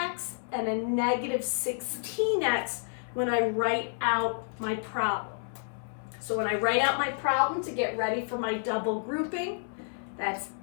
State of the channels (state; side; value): silent; right; 58 dB below the other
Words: and a -16x when I write out my problem. So when I write out my problem to get ready for my double grouping, that's